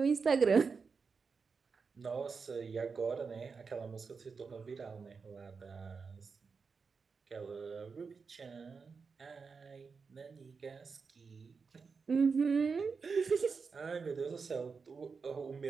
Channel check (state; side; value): quieter; left; 5.1 dB